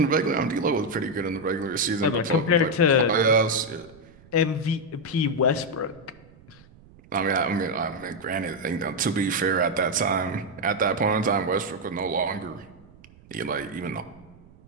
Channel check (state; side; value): noise; right; rumble, 25 dB below the sound